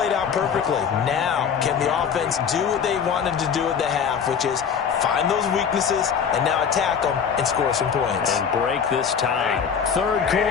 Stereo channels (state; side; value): quieter; right; 7.1 dB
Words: out perfectly. Now, can the offense do what they wanted to do at the half, which is find those weaknesses and now attack them and score some points. And break this tie. 3rd